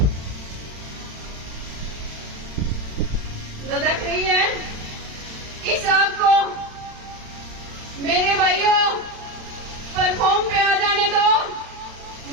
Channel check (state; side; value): late; left; 35 ms